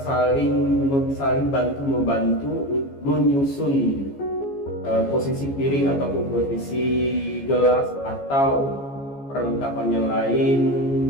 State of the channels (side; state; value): right; late; 14 ms